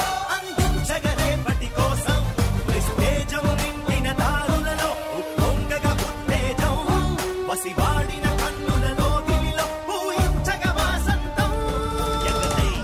అందించగ రేపటి కోసం నిస్తేజం నిండిన దారులలో ఉప్పొంగగ ఉత్తేజం వసివాడిన కన్నులలో గిలిలో పూయించగ వాసంతం ఎగరై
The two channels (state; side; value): identical; both; correlation 1.00